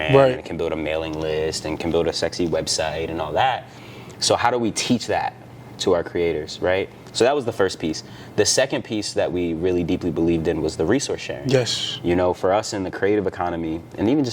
and can build a mailing list and can build a sexy website and all that. So how do we teach that to our creators, right? So that was the first piece. The second piece that we really deeply believed in was the resource sharing. For us in the creative economy, and even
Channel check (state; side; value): identical; both; correlation 1.00